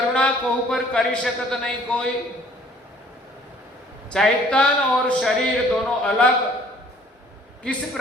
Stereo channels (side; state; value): both; normal; correlation 0.56